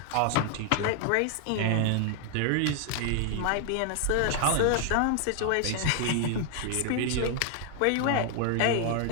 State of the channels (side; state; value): both; different; correlation 0.00